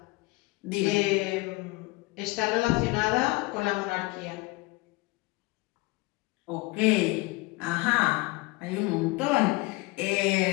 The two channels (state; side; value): quieter; right; 23.5 dB